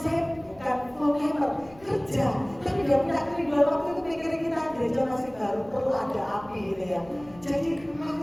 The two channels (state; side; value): noise; left; rumble, 24 dB below the sound